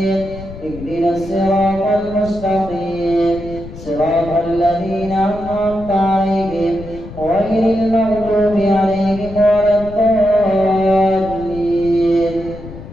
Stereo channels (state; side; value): noise; left; rumble, 14 dB below the sound